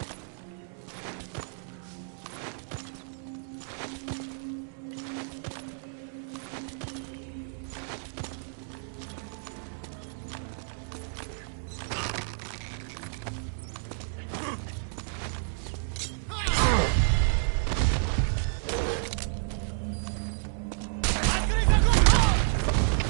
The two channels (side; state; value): left; silent; digital silence